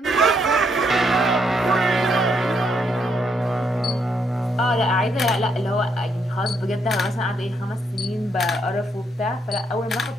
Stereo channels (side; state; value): both; normal; correlation 0.75